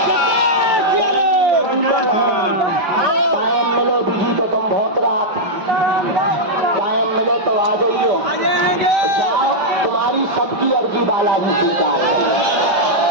टाइम मिले बिजी तो तुम बहुत रात, टाइम मिले तो आ जाइए, जाओ तुम्हारी सबकी अर्जी बालाजी स्वीकार है।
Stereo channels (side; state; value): left; late; 5.1 ms